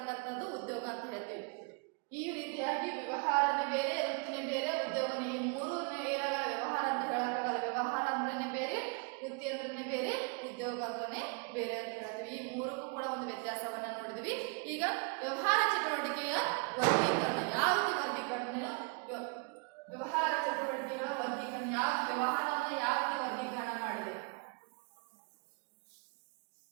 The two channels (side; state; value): left; quieter; 34.6 dB